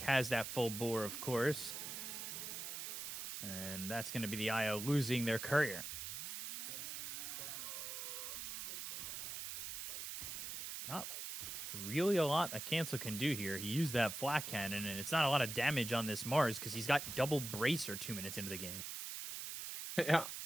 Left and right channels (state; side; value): noise; right; hiss, 6 dB below the sound